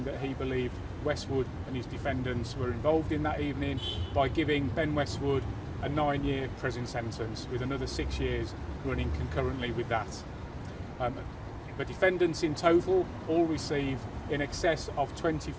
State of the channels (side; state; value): both; identical; correlation 1.00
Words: that he believed Westwood and his defendants were involved in that evening by giving Ben Westwood a 9-year prison sentence, with another 6 years running concurrently with that. The defendants in total all received in excess of